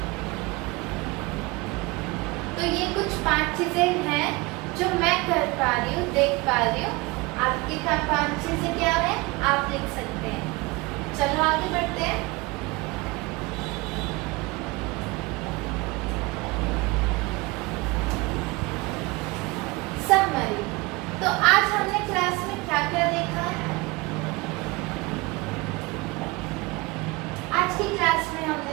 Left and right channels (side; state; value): left; quieter; 23.8 dB